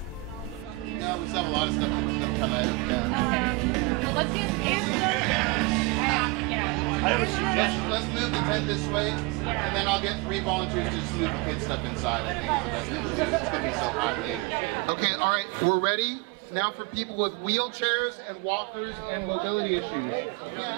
No, we still have a lot of stuff that come out. Yeah. Okay. Well, let's get Let's move the tent this way, and then I'll get 3 volunteers to just move the kids' stuff inside. I think it's the best thing to do. It's going to be so hot later. Okay, all right, we're ready. Now for people with wheelchairs and walkers and mobility issues. Raise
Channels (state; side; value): drops out; left; at 14.4 s